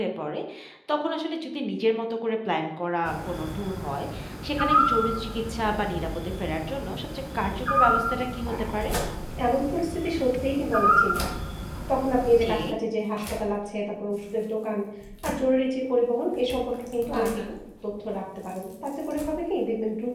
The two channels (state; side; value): identical; both; correlation 1.00